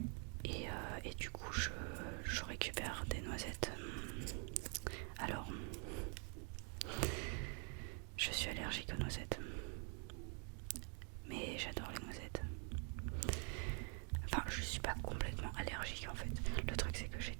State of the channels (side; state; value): left; quieter; 39.0 dB